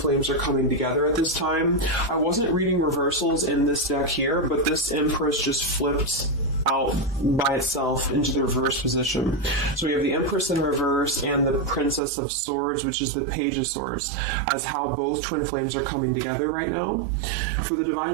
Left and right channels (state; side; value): drops out; left; at 12.0 s